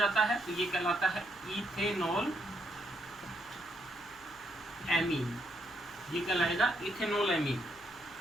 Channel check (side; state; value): left; noise; hum, 27 dB below the sound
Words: है, तो ये कहलाता है इथेनॉल एमीन, ये कहलाएगा इथेनॉल एमीन।